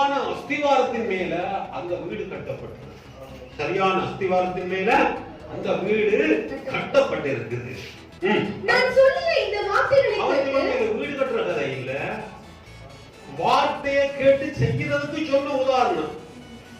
அஸ்திவாரத்தின் மேல அந்த வீடு கட்டப்பட்டது. சரியான அஸ்திவாரத்தின் மேல அந்த வீடு கட்டப்பட்டிருக்குது. நான் சொல்லிய இந்த வார்த்தைகளை கேட்டு வீடு கட்டுற கதை இல்ல, வார்த்தையை கேட்டு செய்யறதுக்கு சொன்ன உதாரணம்.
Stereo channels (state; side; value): identical; both; correlation 1.00